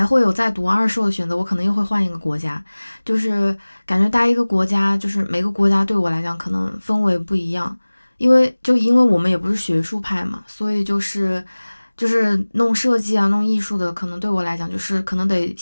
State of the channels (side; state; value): both; inverted; correlation -1.00